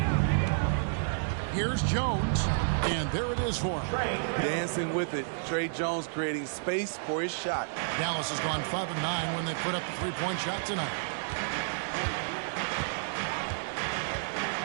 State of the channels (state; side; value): silent; left; digital silence